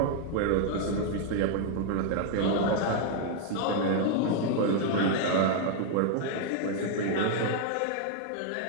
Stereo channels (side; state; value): both; different; correlation 0.00